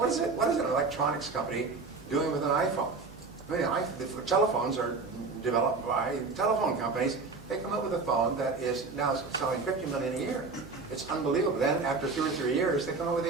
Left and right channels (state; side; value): quieter; left; 4.1 dB